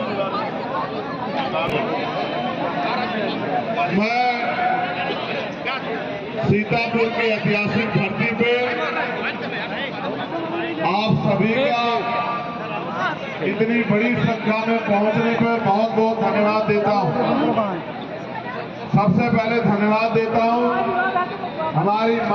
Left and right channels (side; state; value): both; identical; correlation 1.00